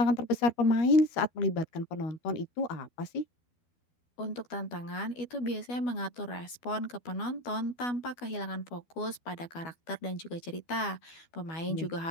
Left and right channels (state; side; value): late; right; 12 ms